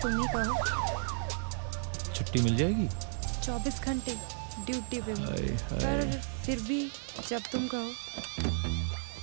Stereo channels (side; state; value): left; silent; digital silence